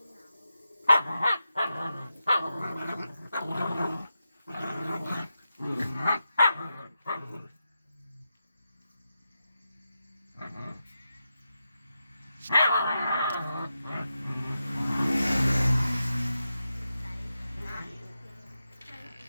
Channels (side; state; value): both; inverted; correlation -0.89